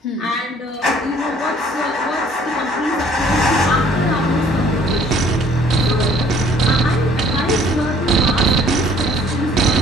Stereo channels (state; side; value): normal; both; correlation 0.57